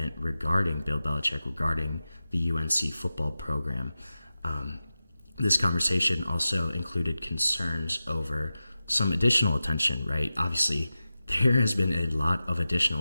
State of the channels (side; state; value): both; inverted; correlation -0.94